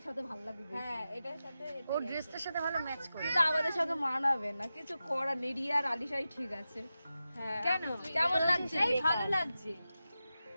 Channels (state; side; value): inverted; both; correlation -0.92